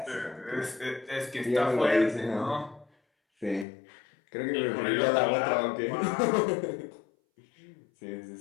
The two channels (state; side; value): drops out; right; at 3.7 s